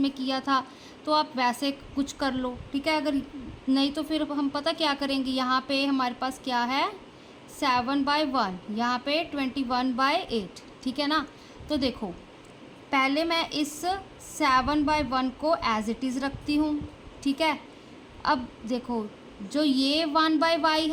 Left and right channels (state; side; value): identical; both; correlation 1.00